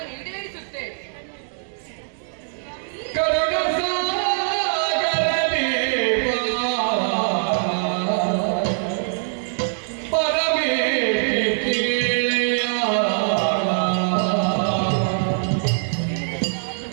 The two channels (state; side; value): silent; left; digital silence